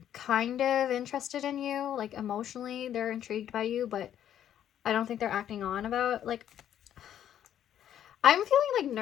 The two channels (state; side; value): quieter; right; 10.4 dB